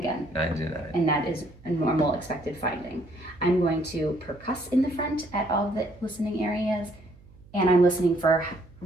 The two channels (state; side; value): noise; right; hum, 24 dB below the sound